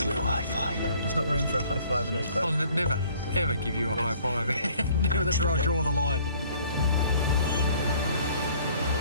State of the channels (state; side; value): inverted; both; correlation -0.57